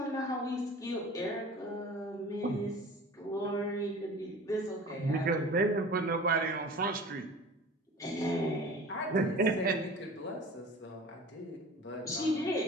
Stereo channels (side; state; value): both; normal; correlation 0.41